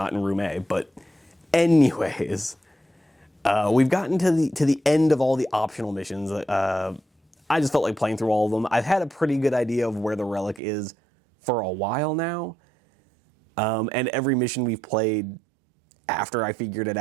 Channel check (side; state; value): left; drops out; at 10.6 s